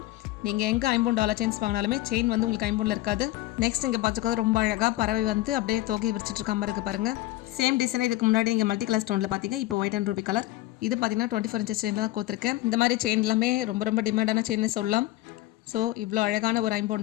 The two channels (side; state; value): right; quieter; 16.6 dB